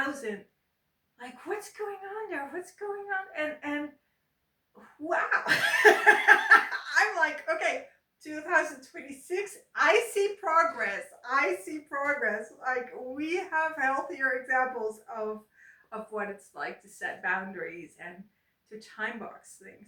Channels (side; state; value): both; identical; correlation 1.00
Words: like what's going on there, what's going on, and wow. I'm like, okay, 2026, I see progress. I see progress. Like we have healthier examples of what it's like to set boundaries and to time box